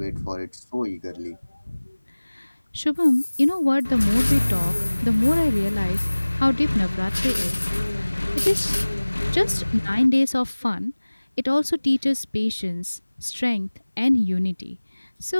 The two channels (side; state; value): both; inverted; correlation -1.00